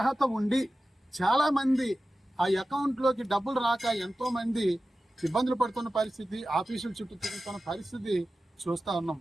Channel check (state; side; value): normal; both; correlation 0.94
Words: ఉండి చాలామంది ఆ అకౌంట్లోకి డబ్బులు రాక ఎంతోమంది ఇబ్బందులు పడుతున్న పరిస్థితి, ఆఫీసుల చుట్టూ తిరుగుతున్న పరిస్థితి చూస్తూ ఉన్నాం.